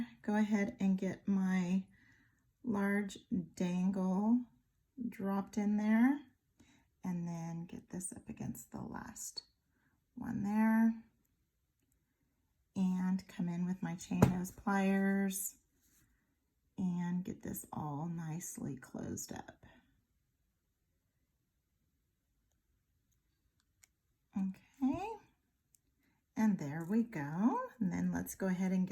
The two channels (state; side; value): identical; both; correlation 1.00